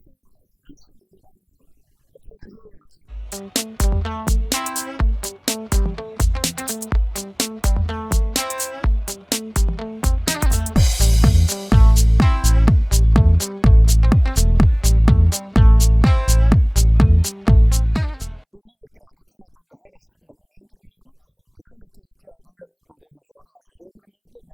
En Shimoda. Het zijn er heel wat. De nieuwe trend. Het gaat om de herfst- en wintermode. Een andere keer in het jaar doen jullie ook nog de voorjaars- en zomermode,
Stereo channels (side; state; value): both; identical; correlation 1.00